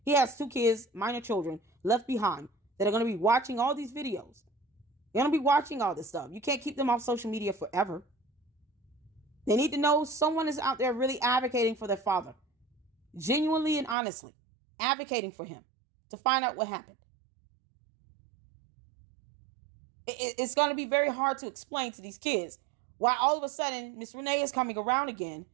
He has 2 kids, minor children, left behind that are going to be watching all these videos. They're going to be watching all this stuff. You can't keep them off social media forever. They need to know someone is out there really advocating for their father. Genuinely and honestly advocating for him to find out what happened. It's going to be very hard to explain to these kids why all of a sudden Miss Renee is coming around again,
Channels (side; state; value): left; drops out; at 14.0 s